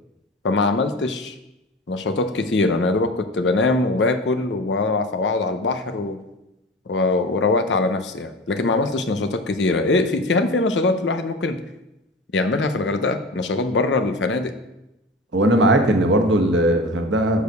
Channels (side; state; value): both; normal; correlation 0.32